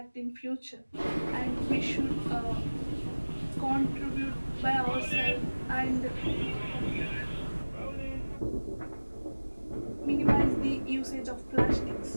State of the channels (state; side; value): inverted; both; correlation -1.00